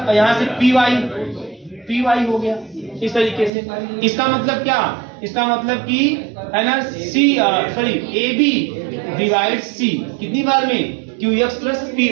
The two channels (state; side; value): drops out; left; at 3.5 s